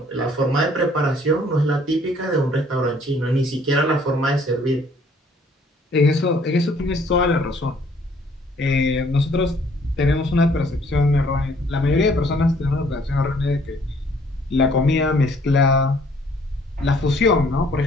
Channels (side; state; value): both; normal; correlation 0.61